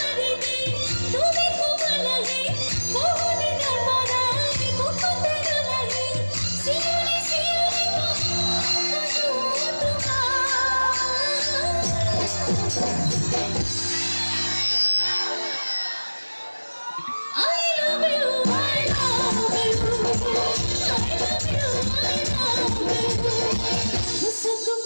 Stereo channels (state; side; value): inverted; both; correlation -1.00